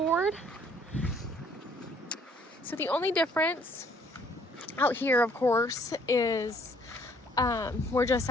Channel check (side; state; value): both; normal; correlation 0.62